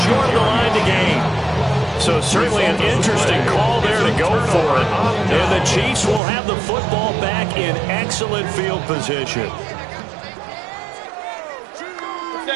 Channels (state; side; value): drops out; left; at 6.2 s